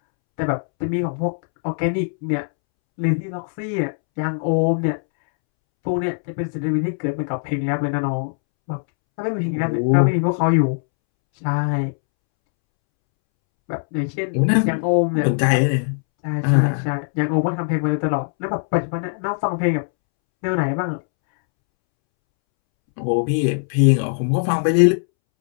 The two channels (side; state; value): right; silent; 65 dB below the other